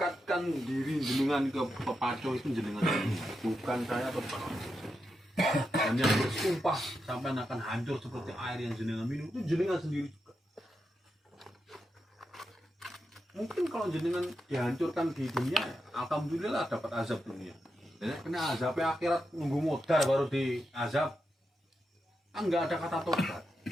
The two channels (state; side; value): normal; both; correlation 0.86